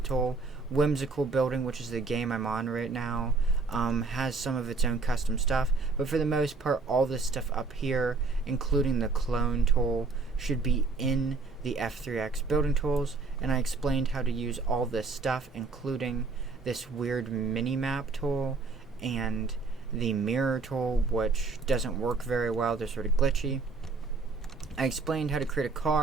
the tool. Whimsical Building, which is the game I'm on right now, has some of its own custom stuff, but for the most part all this stuff up here, including the clone tool, should be in the F3X building tools. And I explained how to use all this stuff, including this weird mini-map tool and the mirror tool, which doesn't work very well. They're sort of glitchy. I explained how to create a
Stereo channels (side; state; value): left; quieter; 4.1 dB